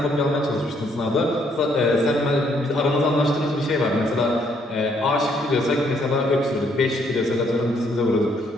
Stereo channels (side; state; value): both; normal; correlation 0.69